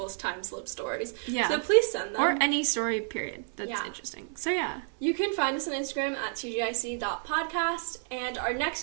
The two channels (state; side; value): silent; left; 58 dB below the other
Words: time slip stories. Yeah. So please send them. Or any story, period. That's interesting. So, yeah. You can find us on Instagram at tgic.podcast, and our